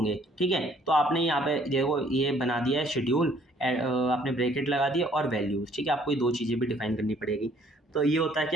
ठीक है। तो आपने यहाँ पे देखो ये बना दिया है शेड्यूल, आपने ब्रैकेट लगा दिया और वैल्यूज, ठीक है। आपको ये दो चीज़ें भी डिफाइन करनी पड़ेगी। तो ये होता है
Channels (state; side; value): normal; both; correlation 0.61